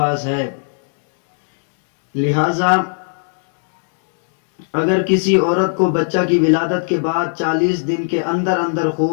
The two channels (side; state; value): right; silent; 68 dB below the other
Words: ہے۔ لہذا اگر کسی عورت کو بچہ کی ولادت کے بعد 40 دن کے اندر اندر